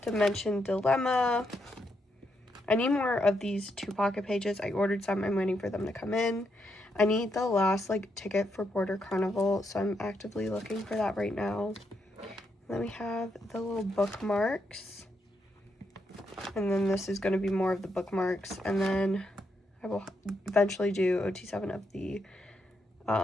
Dimension Dilemma. I need more of these 2 pocket pages. I ordered some. I'm waiting for them to come in. I need the last like ticket for Border Carnival, so I'm actively looking for that right now. Then we have the little bookmarks. And then this is going to be more of the bookmarks. And then I will eventually do OT7 of the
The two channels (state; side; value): normal; both; correlation 0.80